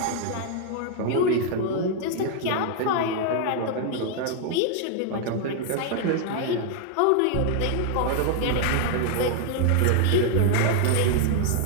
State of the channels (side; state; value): both; different; correlation 0.00